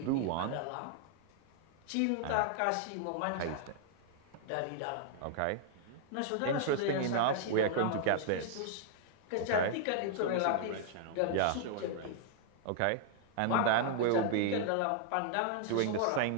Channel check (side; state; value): both; different; correlation -0.01